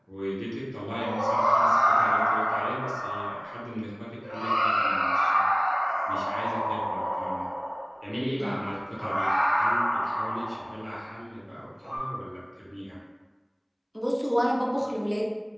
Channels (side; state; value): both; identical; correlation 1.00